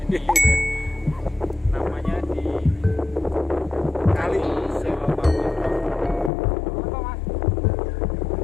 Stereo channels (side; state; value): right; drops out; at 6.3 s